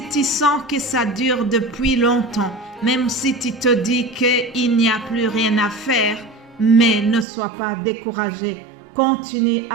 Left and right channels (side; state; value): left; drops out; at 7.2 s